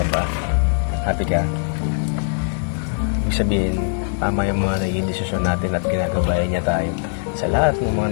ba? Happy ka? Ibig sabihin, tama yung mga naging desisyon natin at ginagabayan niya tayo sa lahat ng mga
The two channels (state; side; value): silent; right; digital silence